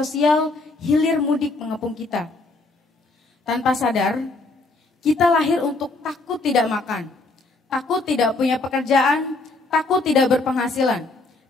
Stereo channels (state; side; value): quieter; right; 3.3 dB